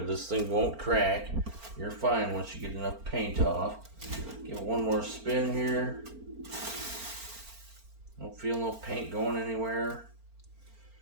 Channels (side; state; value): left; late; 4.4 ms